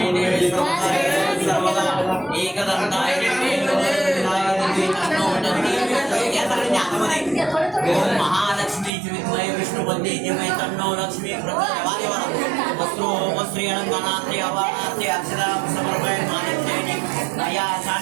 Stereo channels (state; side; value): drops out; left; at 8.9 s